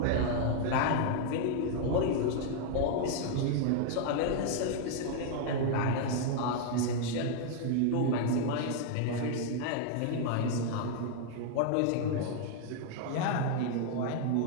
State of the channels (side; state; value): both; different; correlation 0.00